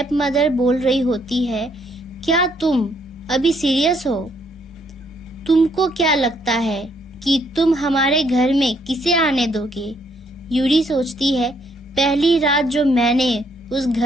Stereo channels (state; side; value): normal; both; correlation 0.70